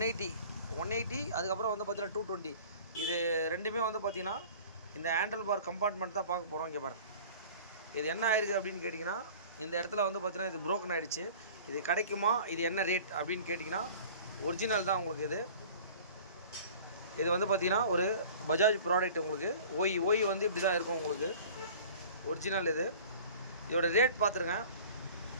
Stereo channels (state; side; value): inverted; both; correlation -0.44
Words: அதுக்கப்புறம் வந்து பார்த்தீங்கன்னா 220 இது ரெண்டுமே வந்து பார்த்தீங்கன்னா இந்த ஹேண்டில் பார் கம்பார்ட்மெண்ட் தான் பார்க்க போகிறோம். இங்கே பாருங்க, இது என்ன ஆயிருக்கு அப்படின்னு கேட்டிங்கன்னா, இந்த இடத்துல வந்து பார்த்தீங்கன்னா இது ப்ரோக்கன் ஆகிடுச்சு. இது கிடைக்குமா, இது என்ன ரேட் அப்படின்னு கேட்டிங்கன்னா, ஒரிஜினல் தான் உங்களுக்கு. இது வந்து பார்த்தீங்கன்னா ஒரு பஜாஜ் ப்ராடக்ட். உங்களுக்கு ஓய் வந்து இப்படி தான் இருக்கும் உங்களுக்கு ஒரிஜினல். இதோட ரேட் பார்த்துருங்க,